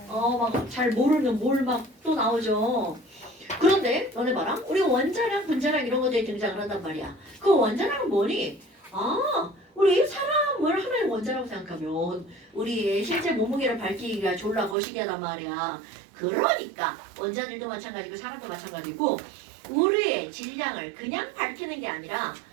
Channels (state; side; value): drops out; left; at 14.8 s